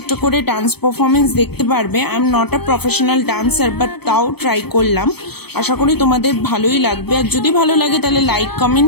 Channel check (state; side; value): late; right; 0.97 ms